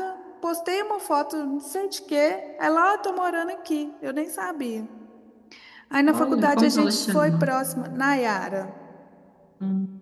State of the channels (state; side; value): identical; both; correlation 1.00